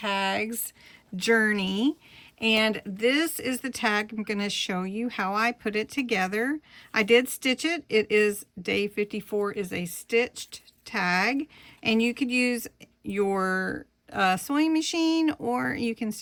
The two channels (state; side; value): identical; both; correlation 1.00